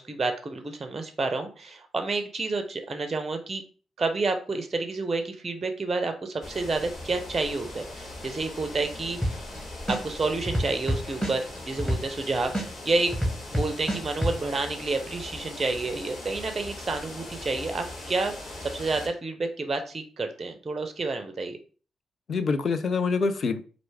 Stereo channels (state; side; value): normal; both; correlation 0.85